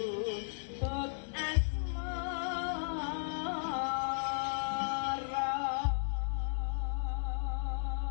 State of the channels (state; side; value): silent; right; digital silence